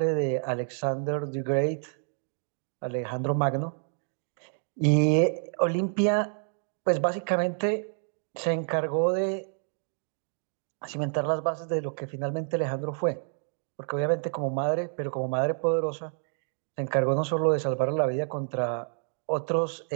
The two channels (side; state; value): left; silent; digital silence